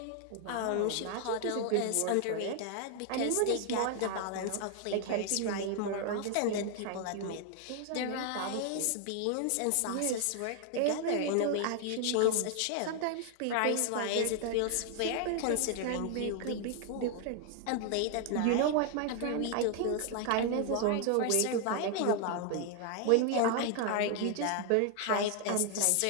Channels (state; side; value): different; both; correlation 0.00